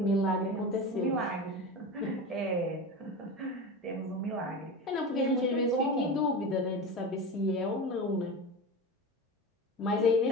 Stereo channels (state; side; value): normal; both; correlation 0.26